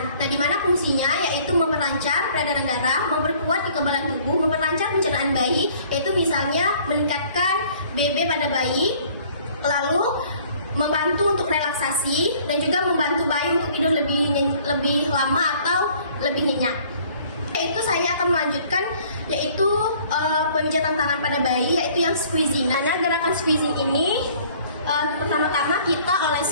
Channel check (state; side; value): inverted; both; correlation -0.56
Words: Nah, di mana fungsinya yaitu memperlancar peredaran darah, memperkuat kekebalan tubuh, memperlancar pencernaan bayi, yaitu misalnya meningkatkan BB pada bayi, lalu membantu untuk relaksasi dan juga membantu bayi untuk tidur lebih lama atau lebih nyenyak. Yaitu saya akan melanjutkan yaitu pemijatan tangan pada bayi, yaitu yang squeezing. Nah, gerakan squeezing ini pertama-tama kita